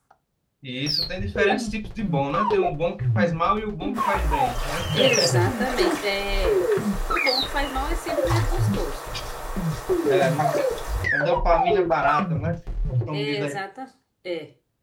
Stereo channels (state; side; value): identical; both; correlation 1.00